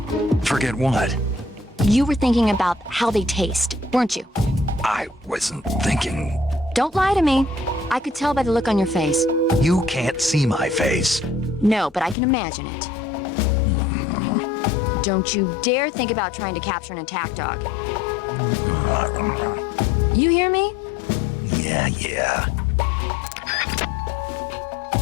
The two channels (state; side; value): drops out; right; at 12.2 s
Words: Forget what? You were thinking about how they taste, weren't you? I wasn't thinking. Don't lie to me. I could tell by the look on your face. You can't see my face. No, but I can imagine it. Don't you dare think about trying to capture an attack dog. You hear me? Yeah.